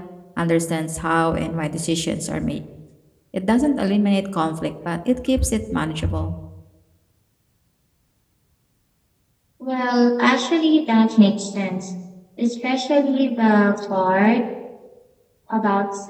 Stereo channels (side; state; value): both; identical; correlation 1.00